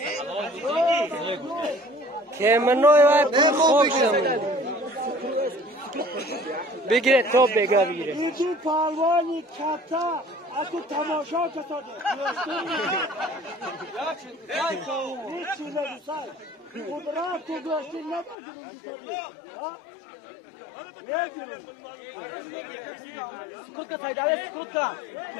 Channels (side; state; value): right; drops out; at 18.4 s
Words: که منوی وای پول خوب شد بگیره تو بگیره اینجور پروانی کتا اگه تماشا کتاده هیچی نگوسای قدرت تو گوشتی نگیریم نگیریم سکوت که سایداله سکوت که